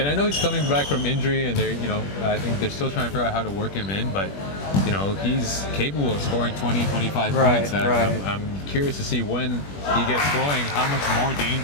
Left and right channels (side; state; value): right; late; 21 ms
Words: I know he's coming back from injury, and they're, I think they're still trying to figure out how to work him in, but he's capable of scoring 20, 25 points. I'm curious to see when he gets going, how much more